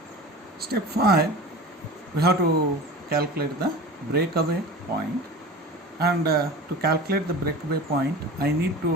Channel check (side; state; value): both; normal; correlation 0.35